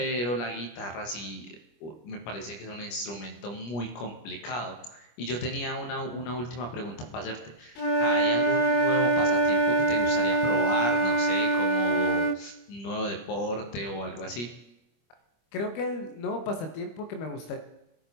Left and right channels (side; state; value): right; late; 25 ms